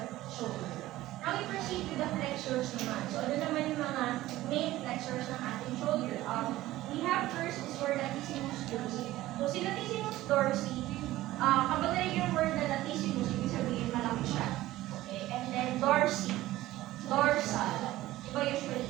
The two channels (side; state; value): left; quieter; 16.1 dB